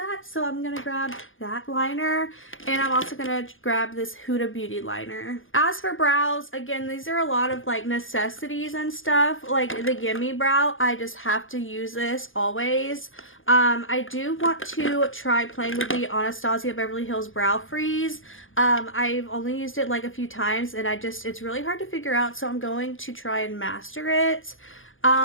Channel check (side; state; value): right; late; 0.58 ms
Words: So I'm going to grab that liner and I'm also going to grab this Huda Beauty liner. As for brows, again, these are a lot of like necessities and stuff. Like the Gimme Brow, I just have to use this always. I do want to try playing with the Anastasia Beverly Hills Brow Freeze. I've only used it like a few times and it's really hard to figure out, so I'm going to try and master it.